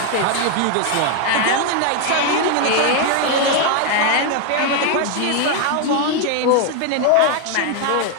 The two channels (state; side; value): different; both; correlation 0.01